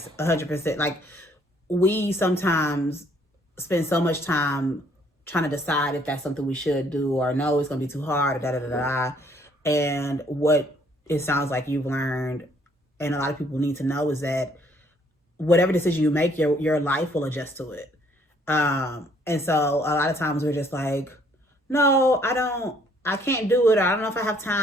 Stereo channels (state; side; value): normal; both; correlation 0.64